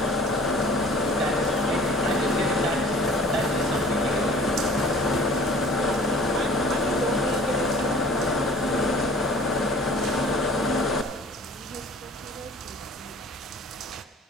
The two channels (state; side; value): normal; both; correlation 0.48